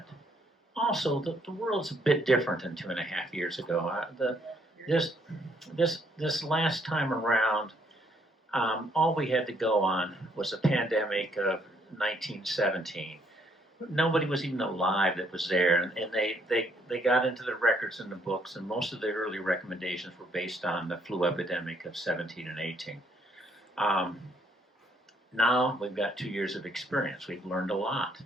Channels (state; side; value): normal; both; correlation 0.69